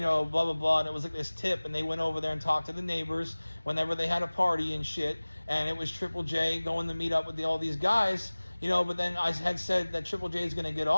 know, blah, blah, blah. And it was like this tip, and they went over there and talked to the neighbors whenever they had a party and shit. And it was Triple J going to meet up with all these guys. but then I had said that Triple J is going to get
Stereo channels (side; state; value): both; inverted; correlation -1.00